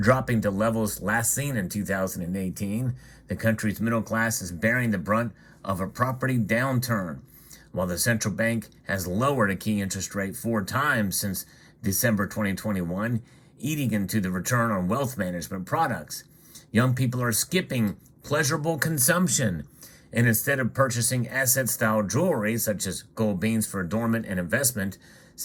to levels last seen in 2018. The country's middle class is bearing the brunt of a property downturn, while the central bank has lowered a key interest rate 4 times since December 2021, eating into the return on wealth management products. Young people are skipping pleasurable consumption, and instead of purchasing asset-style jewelry, such as gold beans for adornment and investment,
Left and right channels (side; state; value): both; identical; correlation 1.00